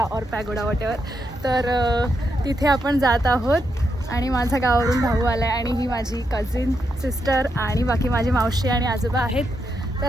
वॉटेवर. तर तिथे आपण जात आहोत आणि माझा गावावरून भाऊ आला आहे आणि ही माझी कझिन सिस्टर आणि बाकी माझी मावशी आणि आजोबा आहेत. तर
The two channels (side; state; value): both; normal; correlation 0.82